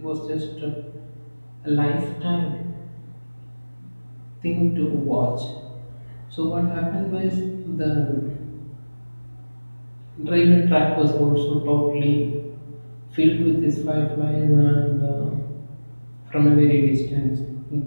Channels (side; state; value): both; inverted; correlation -1.00